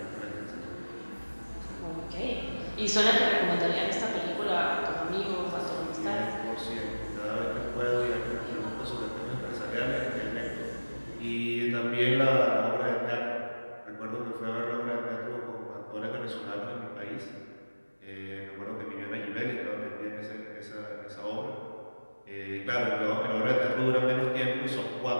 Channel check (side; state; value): both; inverted; correlation -1.00